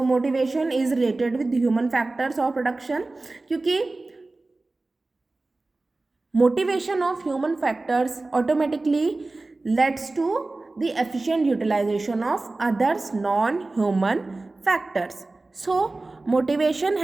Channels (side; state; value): left; quieter; 3.2 dB